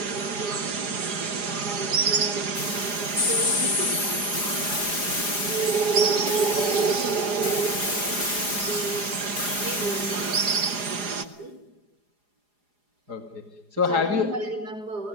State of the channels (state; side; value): late; left; 4.9 ms